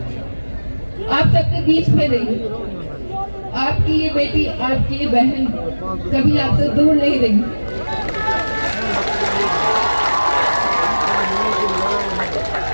आप सबके बीच में रही। आपकी ये बेटी, आपकी ये बहन कभी आपसे दूर नहीं रही।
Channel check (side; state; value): both; inverted; correlation -1.00